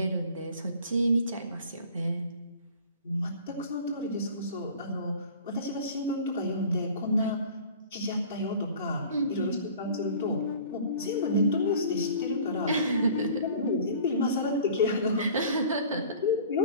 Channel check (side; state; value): both; inverted; correlation -0.45